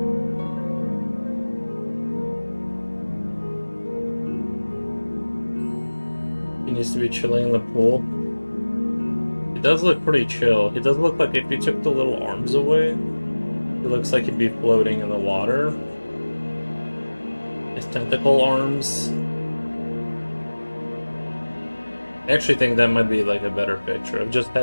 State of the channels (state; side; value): inverted; both; correlation -1.00